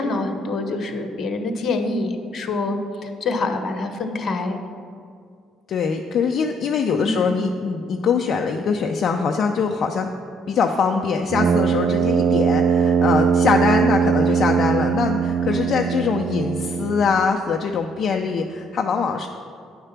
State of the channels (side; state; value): both; normal; correlation 0.66